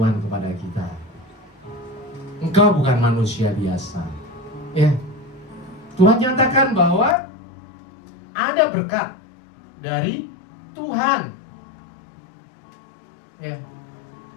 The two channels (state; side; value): drops out; right; at 7.2 s